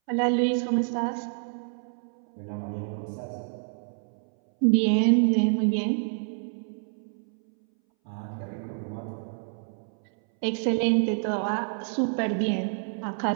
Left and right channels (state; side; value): silent; left; 59 dB below the other